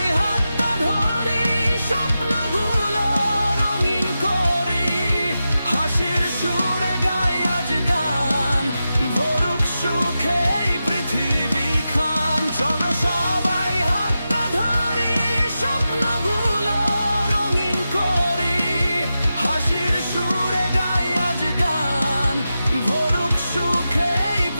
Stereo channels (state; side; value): inverted; both; correlation -0.91